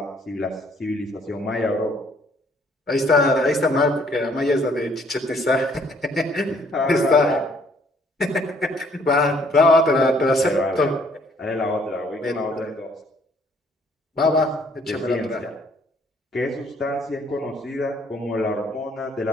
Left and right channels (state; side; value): normal; both; correlation 0.63